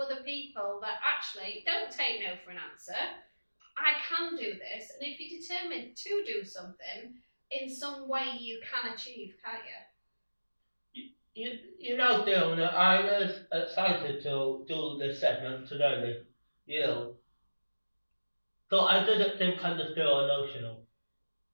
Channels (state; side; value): inverted; both; correlation -1.00